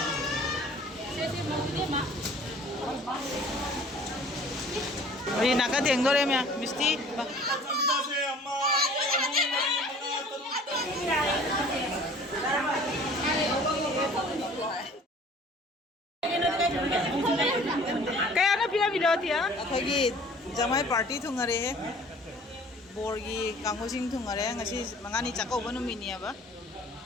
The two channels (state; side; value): normal; both; correlation 0.50